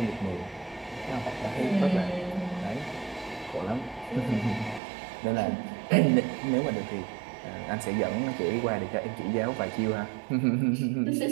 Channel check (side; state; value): left; drops out; at 4.8 s